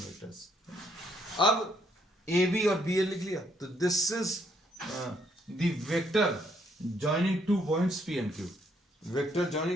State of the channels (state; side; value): normal; both; correlation 0.70